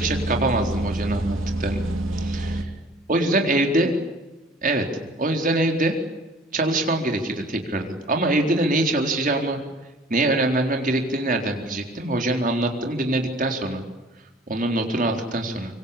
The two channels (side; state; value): both; normal; correlation 0.50